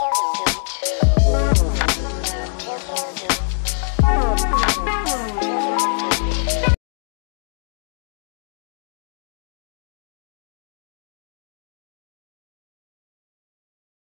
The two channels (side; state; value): right; silent; digital silence